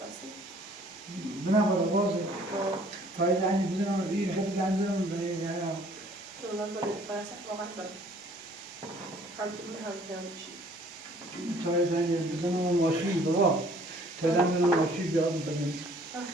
بنا بالا واز پای زنی بزنم این خیلی زن بزنم به یارم پای زنی بزنم ماشین بابا تا زن بزنم ماشین بیام بزنم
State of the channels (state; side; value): normal; both; correlation 0.57